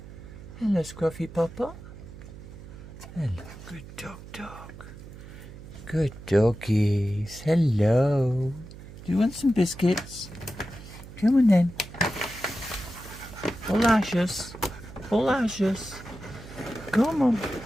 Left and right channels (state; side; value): noise; right; hum, 15 dB below the sound